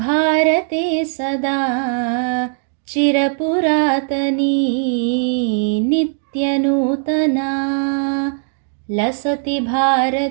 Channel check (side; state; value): left; silent; digital silence